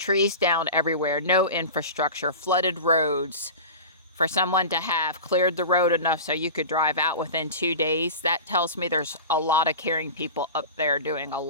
down everywhere, no infrastructure, flooded roads, for someone to have cleared the road enough so you could drive out within 2 days, that tells me there's a lot of caring people up there doing a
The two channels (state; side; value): inverted; both; correlation -0.31